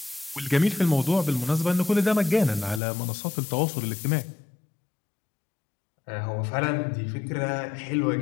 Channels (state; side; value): drops out; right; at 2.8 s